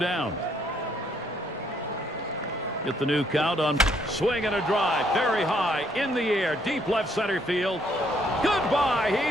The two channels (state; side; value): normal; both; correlation 0.69